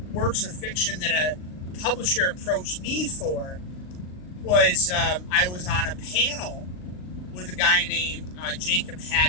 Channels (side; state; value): right; late; 39 ms